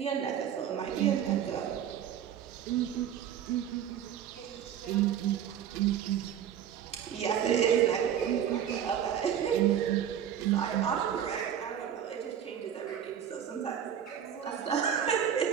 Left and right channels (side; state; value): left; quieter; 9.4 dB